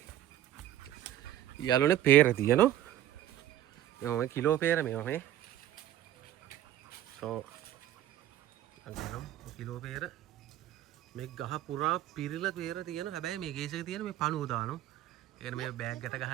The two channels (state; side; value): quieter; left; 12.6 dB